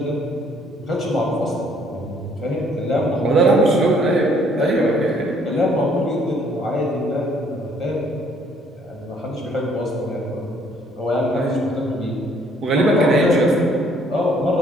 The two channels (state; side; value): normal; both; correlation 0.63